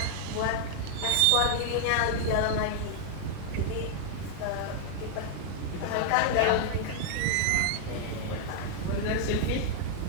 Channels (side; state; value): both; different; correlation -0.01